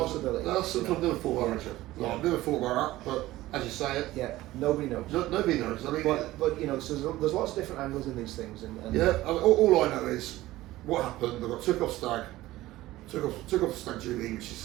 That's something I've never thought about, Richard. Yeah. I've never thought about that, but as you say it, Yeah, nobody knows. nobody knows. I mean, But you know, so there's lots of different angles in these things. And yeah. I mean, all I know is what happened. I got took off stag duty, which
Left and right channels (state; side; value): quieter; left; 16.7 dB